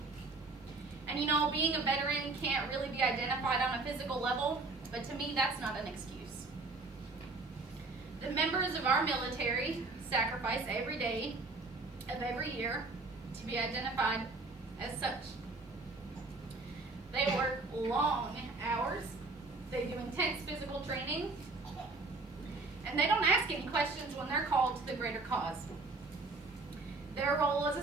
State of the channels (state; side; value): quieter; left; 3.6 dB